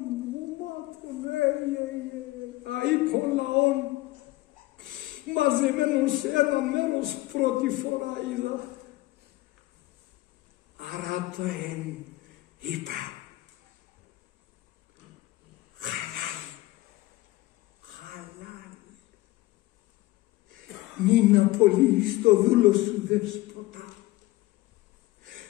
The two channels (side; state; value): right; quieter; 18.6 dB